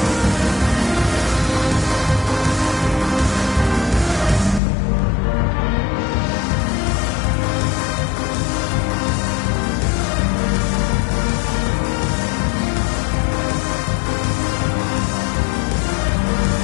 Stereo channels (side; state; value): right; drops out; at 4.6 s